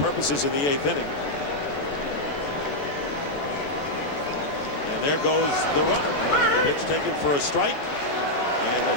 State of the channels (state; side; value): late; right; 14 ms